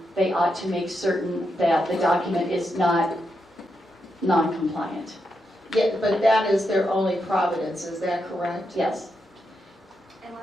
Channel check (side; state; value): both; normal; correlation 0.84